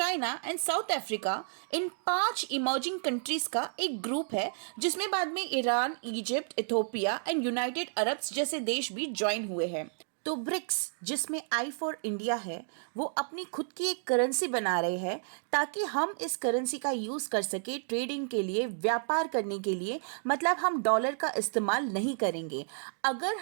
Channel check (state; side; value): silent; left; digital silence